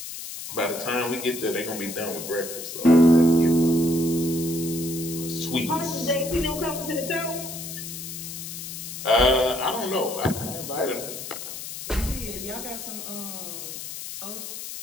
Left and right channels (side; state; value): left; noise; hiss, 9 dB below the sound